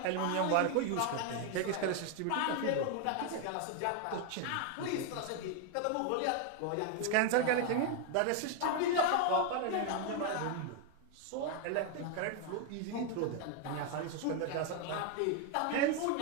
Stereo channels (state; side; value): different; both; correlation 0.01